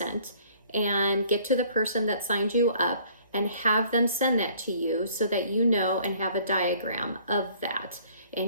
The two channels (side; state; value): both; inverted; correlation -0.57